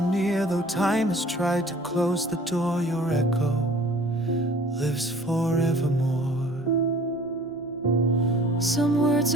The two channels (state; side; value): normal; both; correlation 0.49